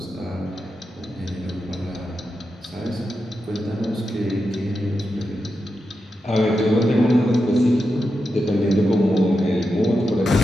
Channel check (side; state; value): both; normal; correlation 0.88